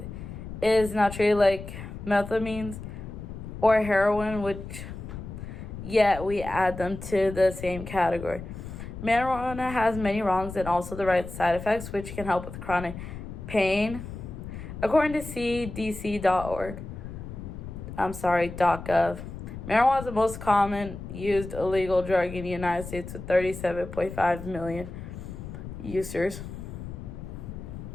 It is now treated like methamphetamines or heroin, which yet we add them to the same category. Marijuana has many wrongs and also the right side effects, which can help with chronic pain. According to cdc.gov, marijuana is the most common used illegal drug in the United States with 37.5 million users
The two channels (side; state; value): left; noise; rumble, 10 dB below the sound